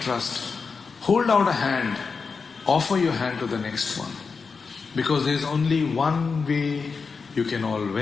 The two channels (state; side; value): quieter; right; 5.0 dB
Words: Hold out a hand, offer your hand to the next one. Because there is only one way you can all